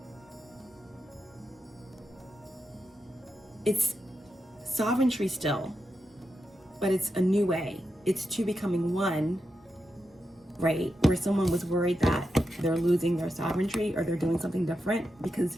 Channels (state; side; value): normal; both; correlation 0.87